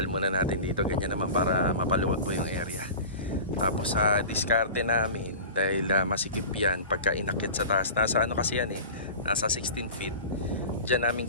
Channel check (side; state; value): both; inverted; correlation -0.35